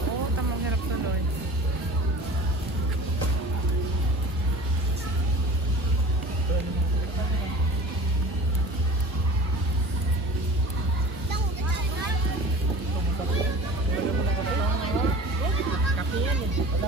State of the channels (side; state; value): both; normal; correlation 0.41